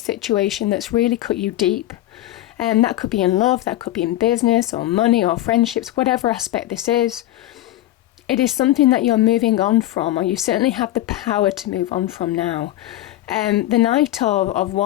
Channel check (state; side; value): quieter; right; 14.7 dB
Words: that's really cut you deep. And that could be in love, that could be in business or money or friendships, whatever aspect this is. It is something that you're moving on from, or you certainly have the power to move on from now. The Knight of